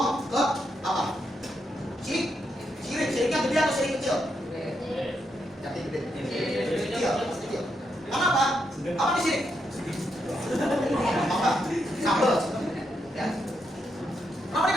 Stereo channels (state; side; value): normal; both; correlation 0.81